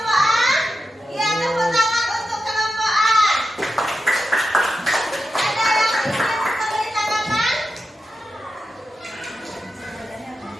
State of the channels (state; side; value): normal; both; correlation 0.90